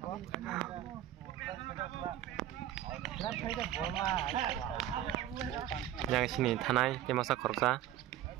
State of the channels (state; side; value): quieter; left; 12.3 dB